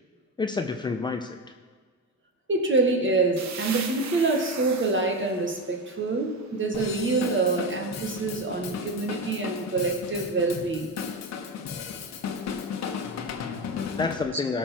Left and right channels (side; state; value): both; normal; correlation 0.18